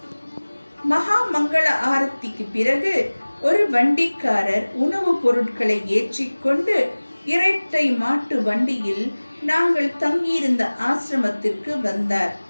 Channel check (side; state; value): both; inverted; correlation -1.00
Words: மகா மங்கள ஆரத்திக்கு பிறகு ஒரு வண்டிக்காரர் உணவுப் பொருட்களை ஏற்றிக்கொண்டு இரட்டை மாட்டு வண்டியில் நாங்கள் தங்கியிருந்த ஆசிரமத்திற்கு வந்தார்.